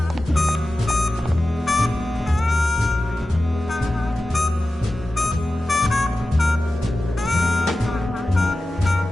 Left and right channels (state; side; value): normal; both; correlation 0.94